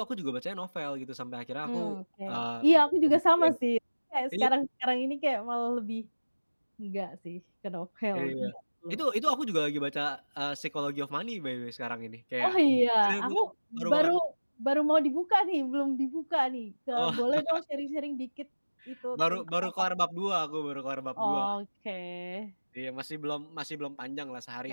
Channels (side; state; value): both; inverted; correlation -1.00